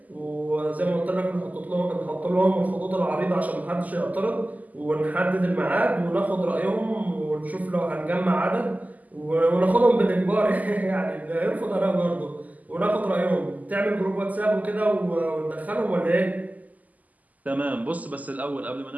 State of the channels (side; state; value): left; late; 0.078 ms